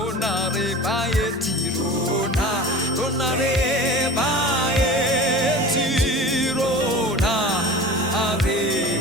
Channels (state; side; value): normal; both; correlation 0.37